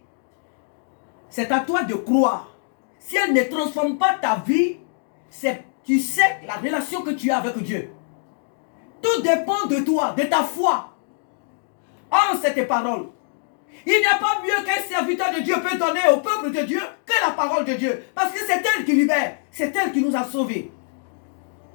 C'est à toi de croire. Si elle ne transforme pas ta vie, tu sais la relation que tu as avec Dieu. Tout dépend de toi, de ta foi en cette parole. Il n'y a pas mieux qu'un serviteur de Dieu peut donner au peuple de Dieu que la parole de Dieu. Parce que c'est elle qui libère. C'est elle qui nous a sauvés.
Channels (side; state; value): right; silent; digital silence